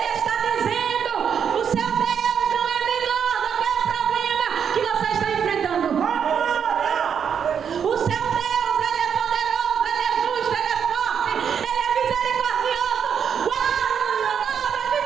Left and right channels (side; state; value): left; quieter; 7.6 dB